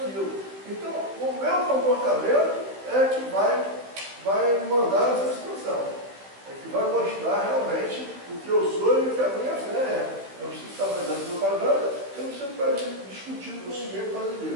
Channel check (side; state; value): left; late; 15 ms